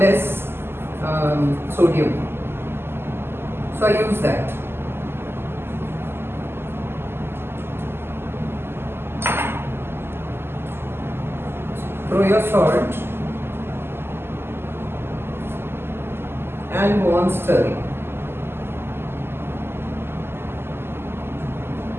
sodium. So I use that. Throw your salt and go on stirring.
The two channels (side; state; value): left; late; 0.12 ms